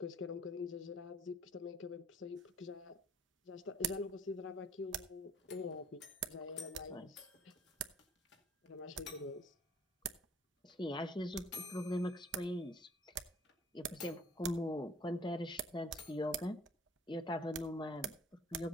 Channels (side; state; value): both; normal; correlation 0.56